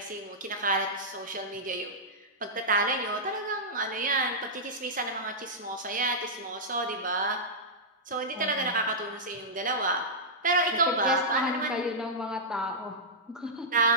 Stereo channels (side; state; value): both; normal; correlation -0.11